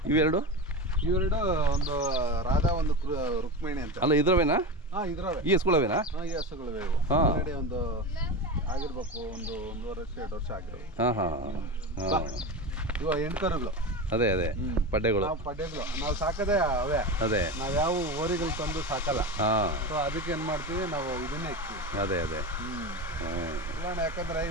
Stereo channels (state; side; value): normal; both; correlation 0.22